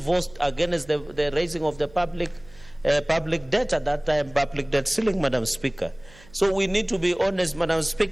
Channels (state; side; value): noise; right; hum, 24 dB below the sound